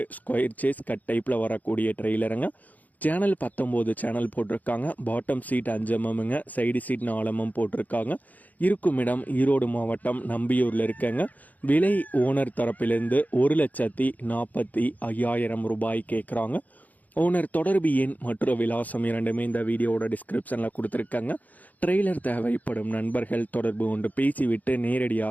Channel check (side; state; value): right; late; 0.079 ms